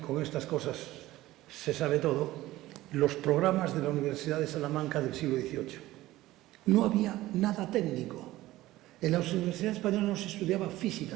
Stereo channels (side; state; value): left; quieter; 16.7 dB